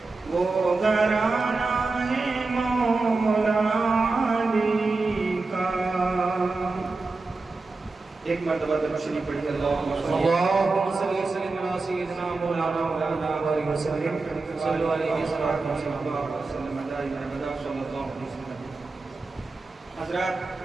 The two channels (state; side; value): quieter; left; 3.7 dB